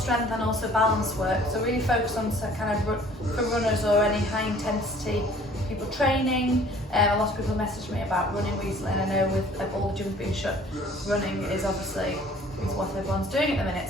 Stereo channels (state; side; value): normal; both; correlation 0.53